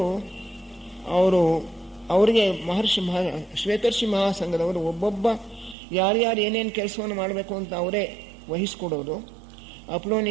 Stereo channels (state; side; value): drops out; left; at 5.8 s